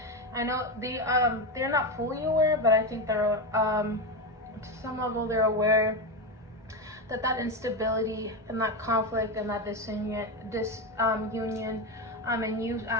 I know they're not fully aware, but I think they're to some level they're aware that instability and that conflict and that disunion, and you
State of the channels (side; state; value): both; normal; correlation 0.14